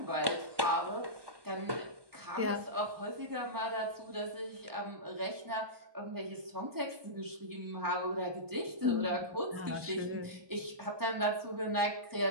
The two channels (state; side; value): late; left; 1.2 ms